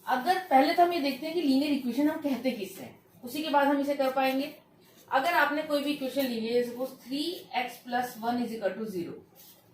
अगर पहले तो हम ये देखते हैं कि लीनियर इक्वेशन हम कहते किससे हैं, उसी के बाद हम इसे कर पाएंगे। अगर आपने कोई भी इक्वेशन ली है, सपोज 3x + 1 = 0,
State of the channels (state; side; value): identical; both; correlation 1.00